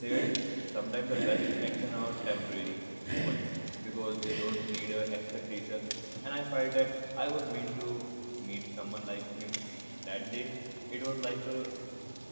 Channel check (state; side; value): inverted; both; correlation -1.00